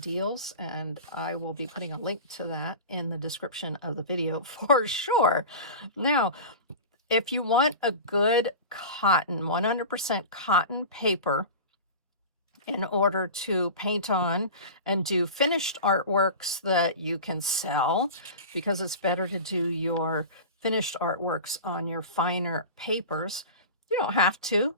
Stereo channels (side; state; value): both; inverted; correlation -0.31